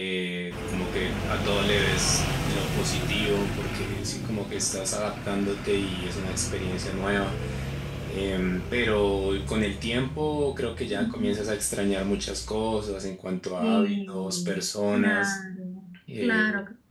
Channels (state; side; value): identical; both; correlation 1.00